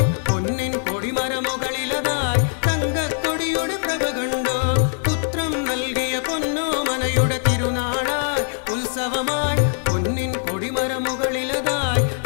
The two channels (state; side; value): silent; right; digital silence